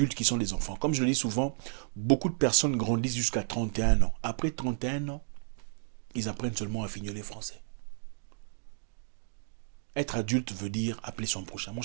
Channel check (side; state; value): left; silent; digital silence